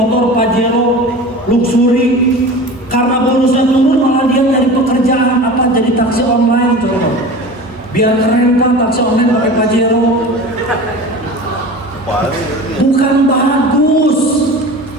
Pajero, luxury, karena bonusnya turun malah dia cari pekerjaan apa, jadi taksi online tuh. Biar keren Pak, taksi online pakai Pajero. Bukan bagus.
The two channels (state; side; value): normal; both; correlation 0.35